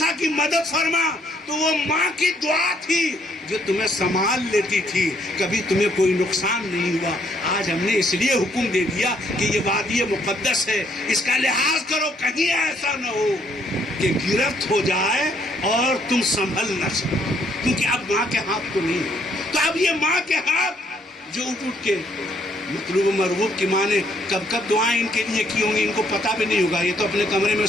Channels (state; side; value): normal; both; correlation 0.69